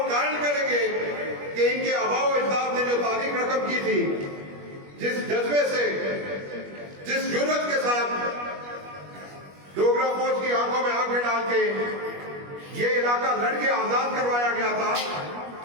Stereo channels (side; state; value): left; late; 21 ms